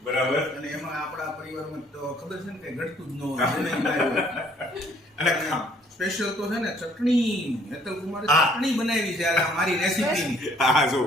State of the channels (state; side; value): normal; both; correlation 0.61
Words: બરાબર. અને એમાં આપણા પરિવારમાં તો ખબર છે ને કે ઘટતું જ ન હોય. અને સ્પેશિયલ તો છે ને ચટણી, હેતલ કુમારે ચટણી બનાવી છે આ મારી રેસીપીની. હા જો,